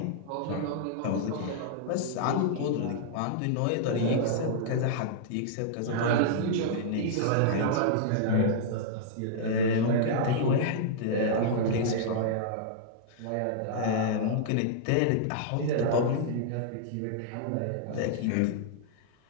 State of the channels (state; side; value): different; both; correlation -0.01